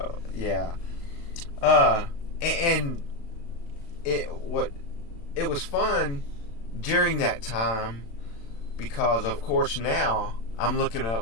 Yeah. And it was fun during that time because, of course, now I'm looking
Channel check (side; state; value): right; late; 35 ms